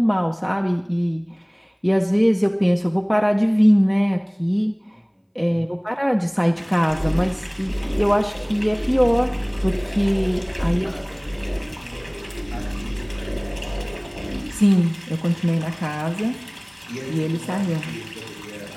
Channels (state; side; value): identical; both; correlation 1.00